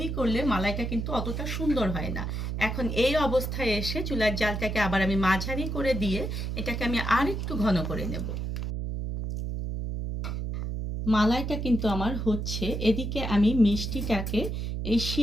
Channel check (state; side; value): noise; right; hum, 3 dB below the sound